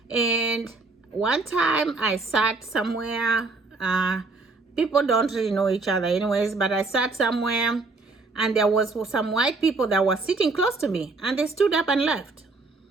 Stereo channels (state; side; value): quieter; left; 3.7 dB